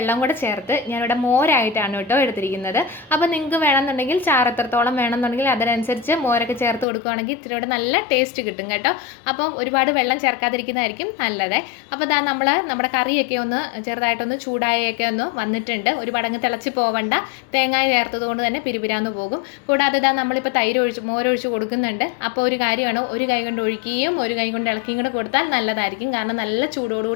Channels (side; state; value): right; drops out; at 6.9 s